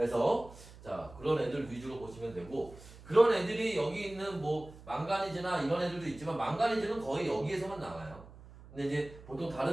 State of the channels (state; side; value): noise; right; hum, 19 dB below the sound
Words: 자 그런 애들 위주로 보시면 되고, 그런 애들이 여기 있는 뭐 망가니즈나 이런 애들도 있지만 망가니즈는 거의 여기에서만 나와요. 근데 이제 보통